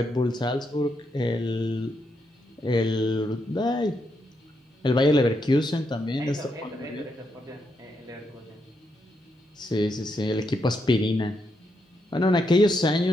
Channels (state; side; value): normal; both; correlation 0.80